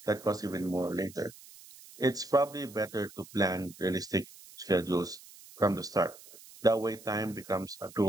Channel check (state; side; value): noise; right; hiss, 20 dB below the sound